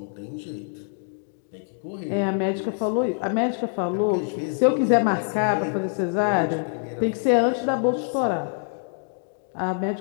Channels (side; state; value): right; silent; digital silence